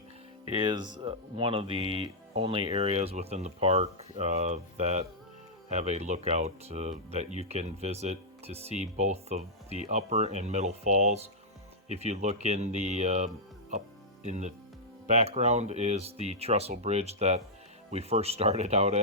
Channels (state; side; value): normal; both; correlation -0.09